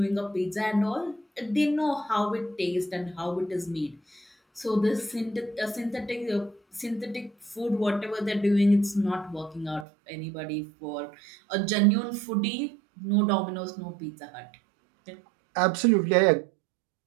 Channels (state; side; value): drops out; left; at 9.9 s